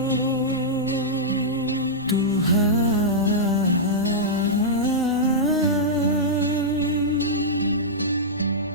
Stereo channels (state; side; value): noise; right; rumble, 24 dB below the sound